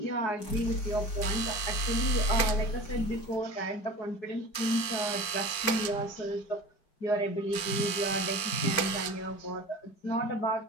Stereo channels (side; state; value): right; late; 4.5 ms